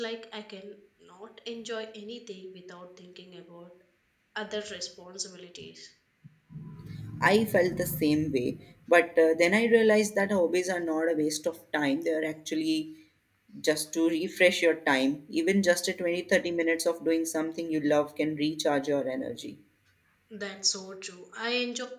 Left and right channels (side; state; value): both; identical; correlation 1.00